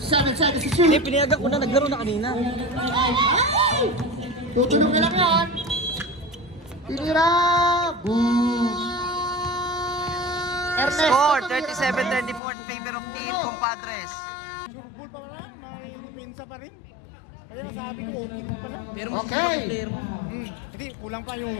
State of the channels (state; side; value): drops out; right; at 12.4 s